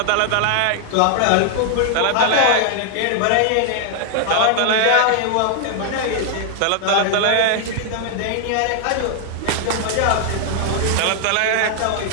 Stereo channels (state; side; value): different; both; correlation 0.00